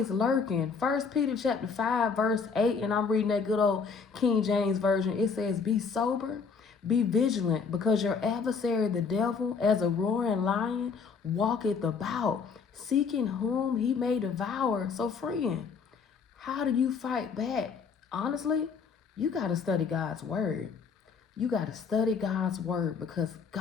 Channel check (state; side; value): quieter; right; 5.5 dB